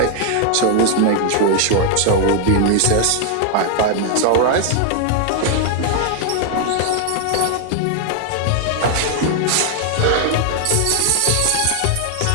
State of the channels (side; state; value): both; different; correlation 0.00